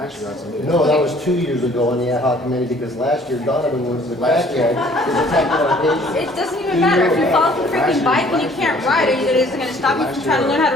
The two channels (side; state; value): both; normal; correlation 0.56